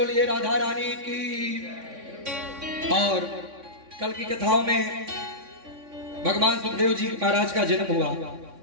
राधा रानी की। और कल की कथाओं में भगवान सुखदेव जी महाराज का जन्म हुआ,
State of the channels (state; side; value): late; left; 3.6 ms